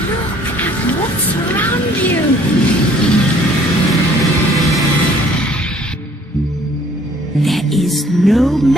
at what's around you. There is no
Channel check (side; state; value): both; normal; correlation 0.58